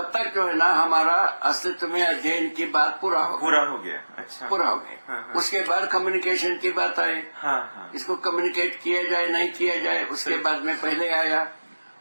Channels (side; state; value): both; inverted; correlation -1.00